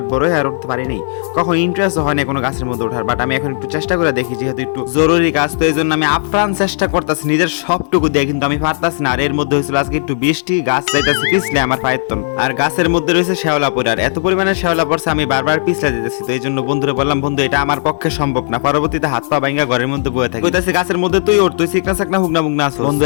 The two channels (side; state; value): right; silent; digital silence